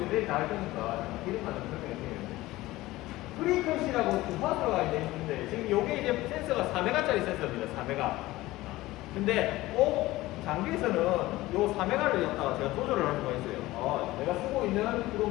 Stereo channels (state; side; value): quieter; right; 18.0 dB